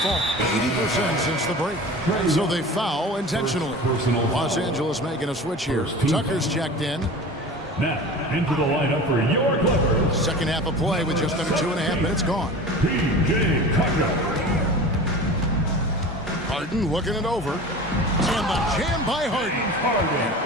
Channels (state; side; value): normal; both; correlation 0.36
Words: 80% since the break. And so they foul intentionally. Los Angeles making a switch here. Tucker's checked in. Now, into the lineup for your Clippers. Second half of play with just under 2.5 minutes gone. P.J. Tucker. Harden looking it over. And the jam by Harden. An